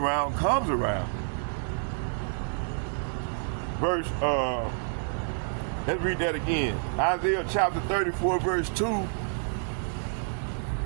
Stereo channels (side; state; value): left; silent; 59 dB below the other